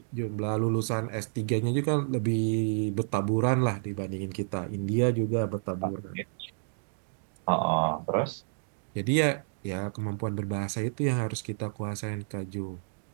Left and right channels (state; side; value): silent; left; digital silence